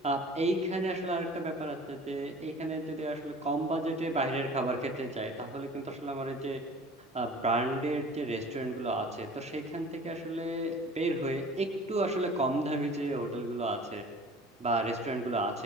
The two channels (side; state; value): both; normal; correlation 0.44